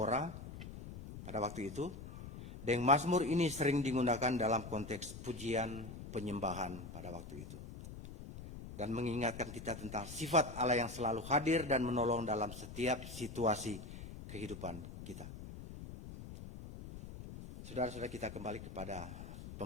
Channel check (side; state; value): left; noise; rumble, 11 dB below the sound